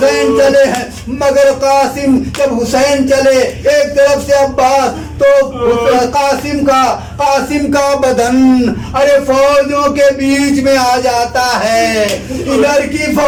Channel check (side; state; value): both; identical; correlation 1.00